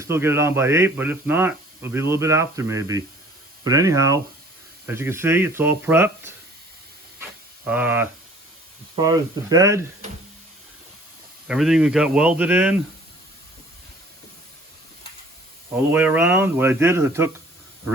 still get it on by 8, but if not, it'll be a little bit after maybe. But anyhow, as you can see, it's all prepped. As far as the bed, everything we got welded in all the way around. What I did is I took a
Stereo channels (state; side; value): normal; both; correlation 0.52